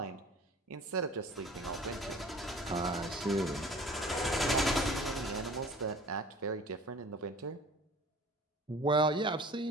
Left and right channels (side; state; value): both; normal; correlation 0.45